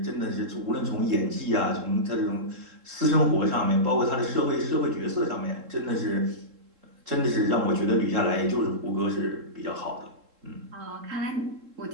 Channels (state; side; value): late; left; 3.7 ms